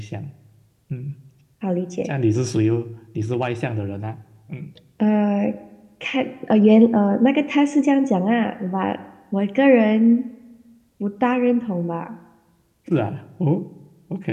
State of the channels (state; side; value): identical; both; correlation 1.00